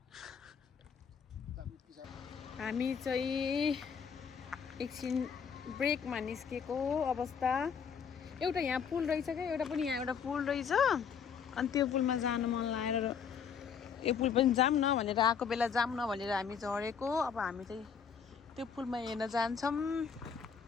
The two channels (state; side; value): quieter; right; 6.8 dB